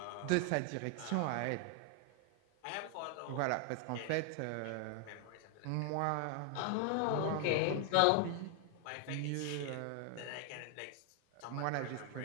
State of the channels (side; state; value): both; different; correlation 0.00